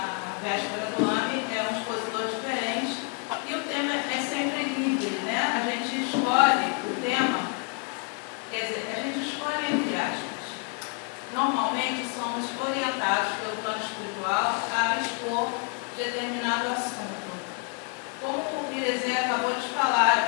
véspera do ano, é um expositor diferente. E o tema é sempre livre, né? A gente escolhe o tema, quer dizer, a gente escolhe entre aspas. Normalmente somos orientados pelo plano espiritual a expor determinado assunto. Como o Iresê acabou de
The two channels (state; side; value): quieter; right; 36.2 dB